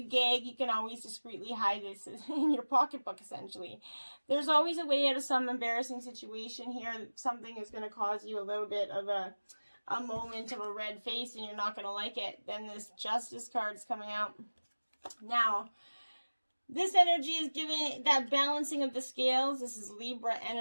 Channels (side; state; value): both; inverted; correlation -1.00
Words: gag, you can always discreetly hide this in your pocketbook, essentially. There's always a way out of some embarrassing situation here. Something is going to cause you a little bit of a moment of a red face, and you're not going to like it. Then this Justice card is coming out. Now, this energy is giving that balancing of the scales. This is Libra